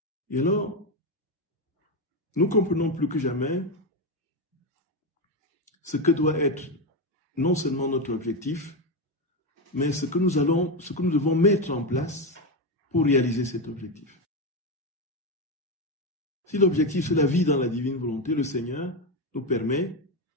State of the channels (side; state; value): both; normal; correlation 0.12